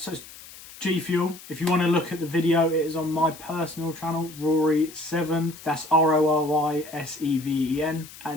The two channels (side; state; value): left; noise; hiss, 17 dB below the sound